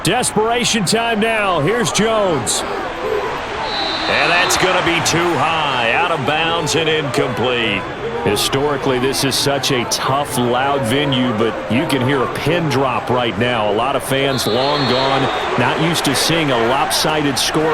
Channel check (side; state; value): both; identical; correlation 1.00